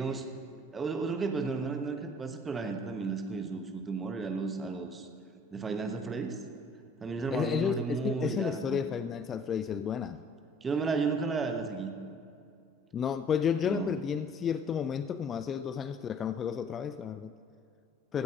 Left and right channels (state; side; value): normal; both; correlation 0.55